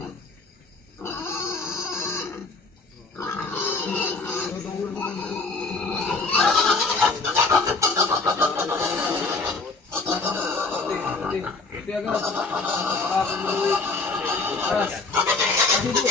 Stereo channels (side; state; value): right; quieter; 3.8 dB